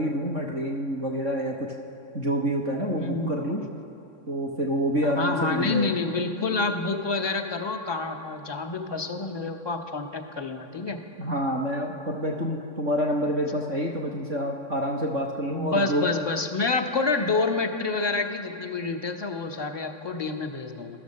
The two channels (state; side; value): late; left; 3.6 ms